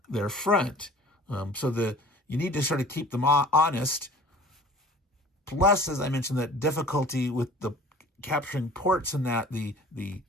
their front. So you need to sort of keep them honest. Plus, as I mentioned, that difficulty with the capturing ports, and that the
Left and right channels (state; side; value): normal; both; correlation 0.45